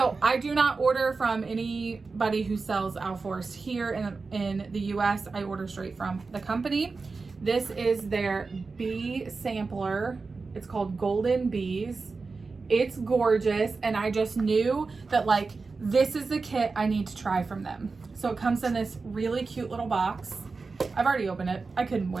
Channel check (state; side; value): quieter; left; 4.2 dB